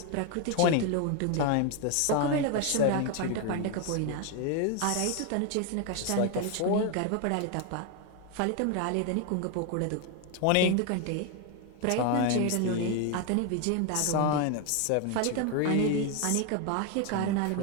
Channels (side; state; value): both; different; correlation 0.01